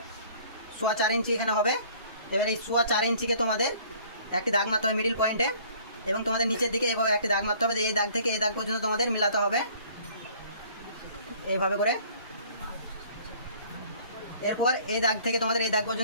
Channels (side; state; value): both; inverted; correlation -0.54